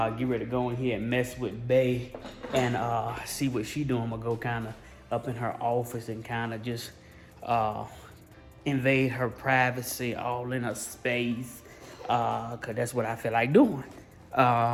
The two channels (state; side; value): identical; both; correlation 1.00